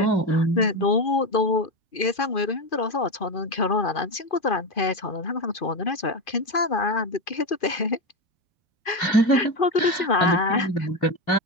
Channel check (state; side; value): late; right; 2.5 ms